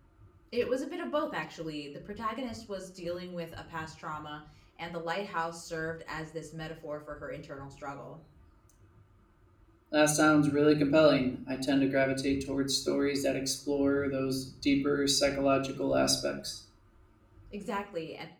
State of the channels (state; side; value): identical; both; correlation 1.00